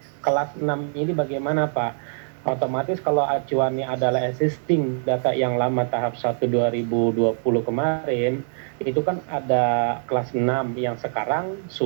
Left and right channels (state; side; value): silent; left; digital silence